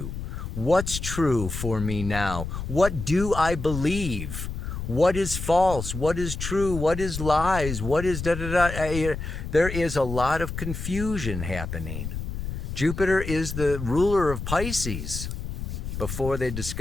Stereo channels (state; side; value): noise; left; rumble, 6 dB below the sound